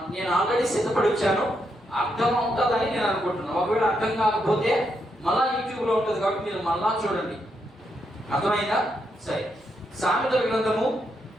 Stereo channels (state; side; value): normal; both; correlation 0.80